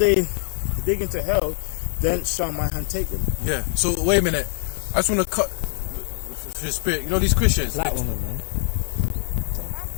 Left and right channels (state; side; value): silent; right; 63 dB below the other